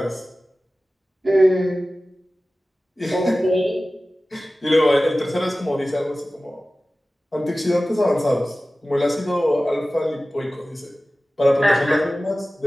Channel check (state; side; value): normal; both; correlation 0.96